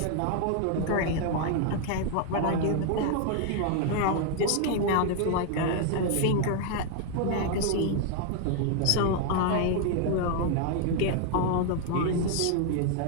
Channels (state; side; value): different; both; correlation 0.00